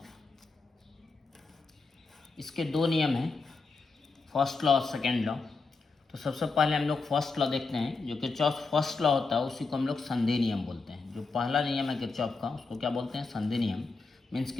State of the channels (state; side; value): quieter; right; 4.1 dB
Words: इसके 2 नियम हैं, फर्स्ट लॉ और सेकेंड लॉ। तो सबसे पहले हम लोग फर्स्ट लॉ देखते हैं। जो किरचॉफ फर्स्ट लॉ होता है उसी को हम लोग संधि नियम बोलते हैं। जो पहला नियम है किरचॉफ का उसको क्या बोलते हैं? संधि नियम। मीन्स